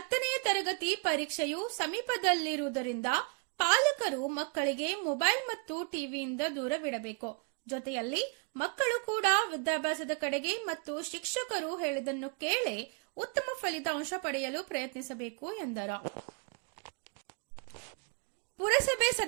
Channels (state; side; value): quieter; left; 35.8 dB